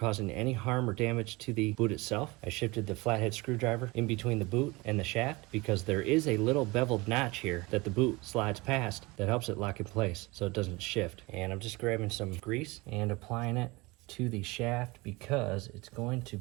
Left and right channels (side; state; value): left; quieter; 23.6 dB